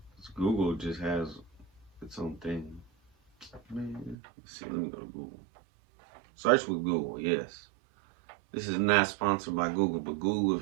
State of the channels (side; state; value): left; drops out; at 4.2 s